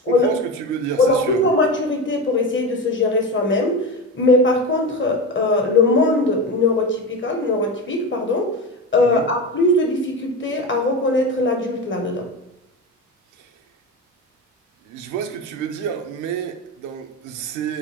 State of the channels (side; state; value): both; normal; correlation 0.22